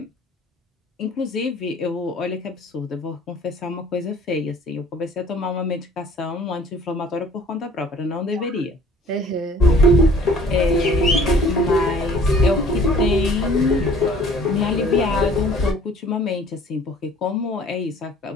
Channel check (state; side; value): normal; both; correlation 0.52